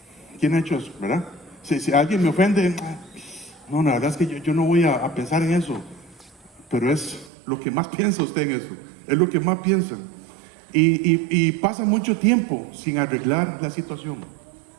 ¿Quién ha hecho eso, verdad? Si alguien me ofende, no, la verdad es que yo no voy a pensar en eso. Pero es lo que más piensa usted en eso. Es lo que más piensa. Y pasa mucho tiempo sin arreglar la situación.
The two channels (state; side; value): drops out; left; at 7.3 s